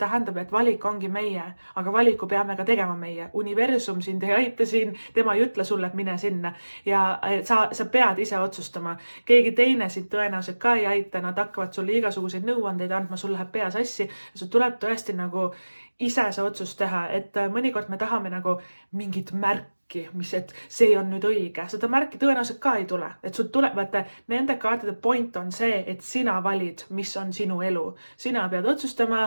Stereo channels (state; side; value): inverted; both; correlation -1.00